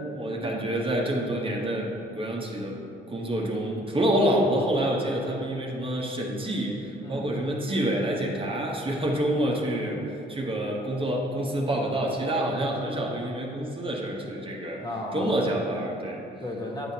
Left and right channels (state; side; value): normal; both; correlation 0.59